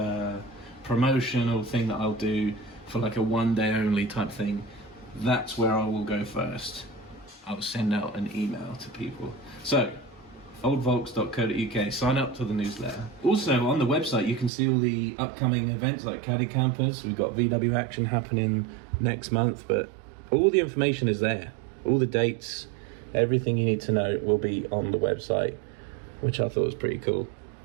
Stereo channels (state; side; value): drops out; left; at 14.5 s